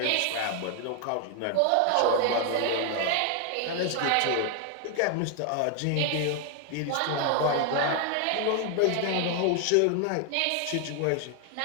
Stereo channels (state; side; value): different; both; correlation 0.00